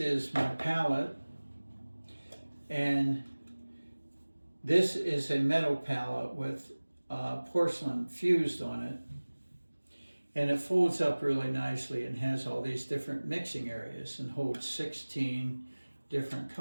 my palette, and this is a metal palette with porcelain fused on it, and it folds up really nicely and has all these different mixing areas and holds 16 different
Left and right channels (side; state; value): both; inverted; correlation -1.00